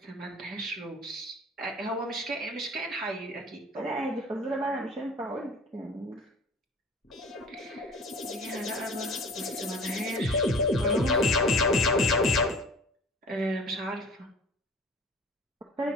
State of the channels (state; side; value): normal; both; correlation 0.44